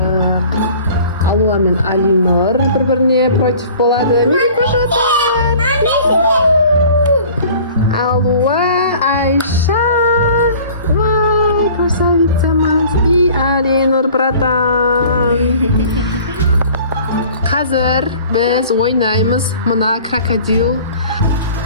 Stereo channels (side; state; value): both; inverted; correlation -0.47